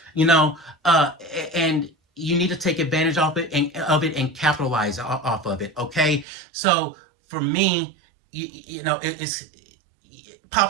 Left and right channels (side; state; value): left; drops out; at 6.2 s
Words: And you need to take advantage of it and capitalize off of it. Okay, so for me, it's